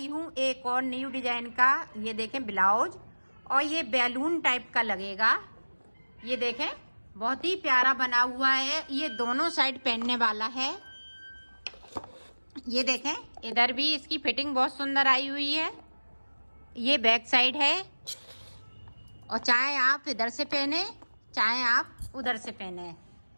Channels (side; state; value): both; inverted; correlation -1.00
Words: हूँ एक और न्यू डिजाइन का। ये देखें ब्लाउज, और ये बैलून टाइप का लगेगा। ये देखें बहुत ही प्यारा बना हुआ है। ये दोनों साइड पहनने वाला है। ये देखें इधर भी इसकी फिटिंग बहुत सुंदर आई हुई है। ये बैक साइड है, और चाहे आप इधर से पहने चाहे आप उधर से पहने,